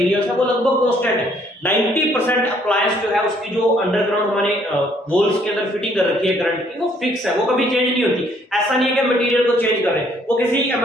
है वो लगभग कांस्टेंट है। 90% अप्लायंस जो है उसकी जो अंडरग्राउंड हमारे वॉल्स के अंदर फिटिंग कर रखी है करंट की, वो फिक्स है, वो कभी चेंज नहीं होती। ऐसा नहीं है कि मटेरियल को चेंज कर रहे हैं, वो किसी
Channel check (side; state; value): both; normal; correlation 0.65